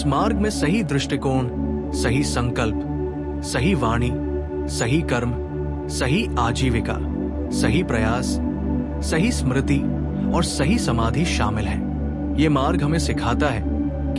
मार्ग में सही दृष्टिकोण, सही संकल्प, सही वाणी, सही कर्म, सही आजीविका, सही प्रयास, सही स्मृति और सही समाधि शामिल है। ये मार्ग हमें सिखाता है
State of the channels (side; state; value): both; identical; correlation 1.00